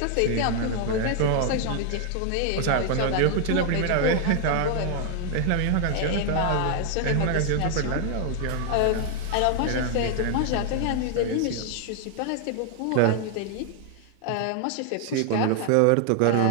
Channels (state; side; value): different; both; correlation 0.00